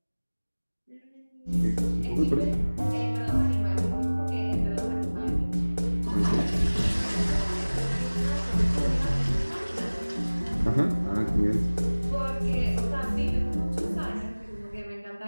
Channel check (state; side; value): inverted; both; correlation -1.00